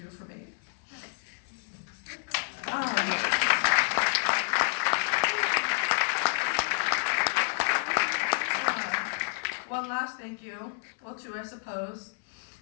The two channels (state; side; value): silent; right; 58 dB below the other